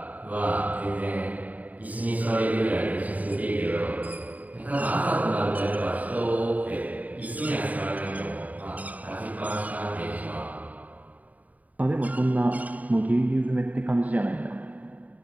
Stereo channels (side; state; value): left; late; 0.074 ms